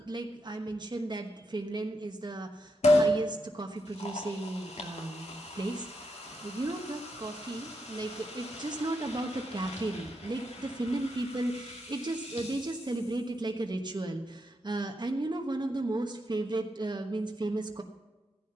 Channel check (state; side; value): normal; both; correlation 0.82